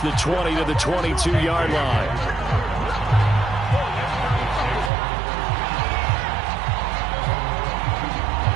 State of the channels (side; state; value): left; drops out; at 4.9 s